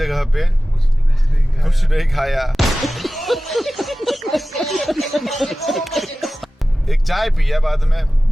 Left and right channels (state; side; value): normal; both; correlation 0.96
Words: पे कुछ नहीं खाया। एक चाय पिया बाद में,